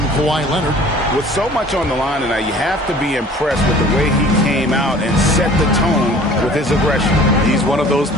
Kawhi Leonard. With so much on the line tonight, you have to be impressed with the way he came out and set the tone with his aggression. He's one of those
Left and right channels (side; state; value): both; normal; correlation 0.48